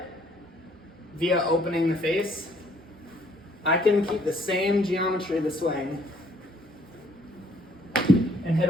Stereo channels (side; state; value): both; normal; correlation 0.64